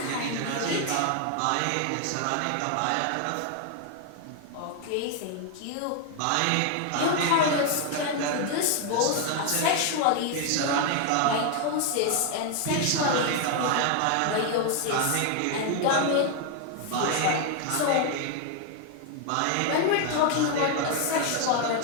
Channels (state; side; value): different; both; correlation 0.01